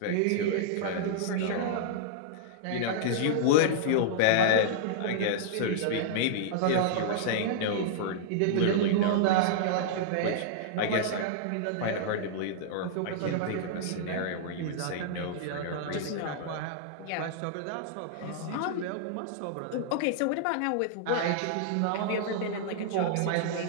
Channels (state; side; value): different; both; correlation -0.01